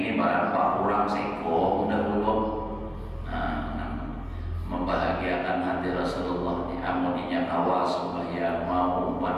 barang pak kurang seko dahulu. Membahagiakan hati Rasulullah, amuninya kawas sembahyang mau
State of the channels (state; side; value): identical; both; correlation 1.00